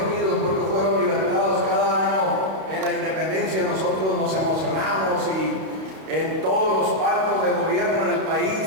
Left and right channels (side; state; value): left; late; 32 ms